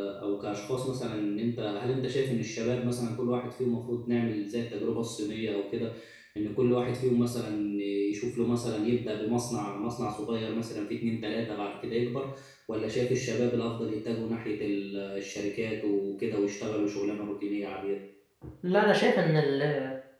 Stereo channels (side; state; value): both; identical; correlation 1.00